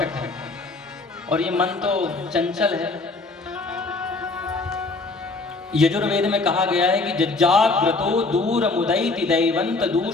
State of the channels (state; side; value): quieter; right; 3.6 dB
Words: है और ये मन तो चंचल है। यजुर्वेद में कहा गया है कि जाग्रतो दूर मुदैति दैवंत